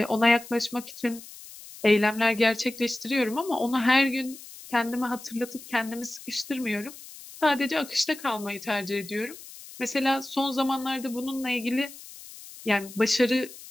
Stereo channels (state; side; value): noise; left; hiss, 16 dB below the sound